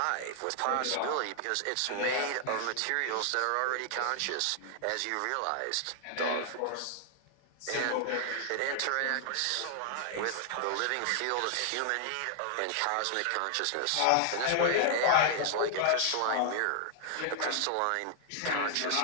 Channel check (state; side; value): different; both; correlation -0.01